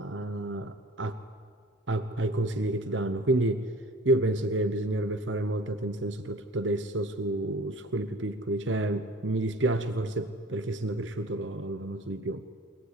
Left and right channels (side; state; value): both; normal; correlation 0.45